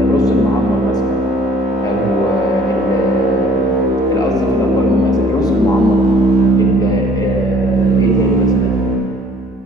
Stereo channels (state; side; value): normal; both; correlation 0.55